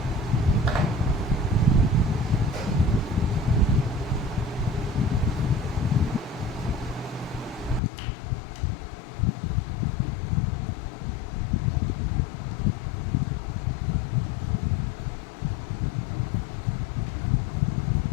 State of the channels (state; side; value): drops out; right; at 7.8 s